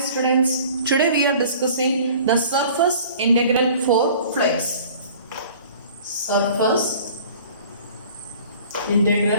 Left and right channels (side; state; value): both; inverted; correlation -0.48